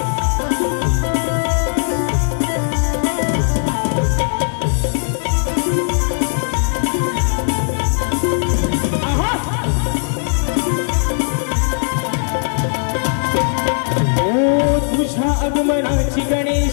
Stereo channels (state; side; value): silent; right; 56 dB below the other